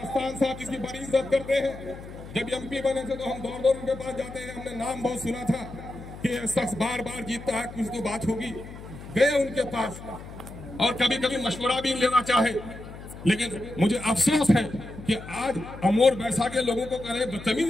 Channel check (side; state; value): left; noise; hum, 14 dB below the sound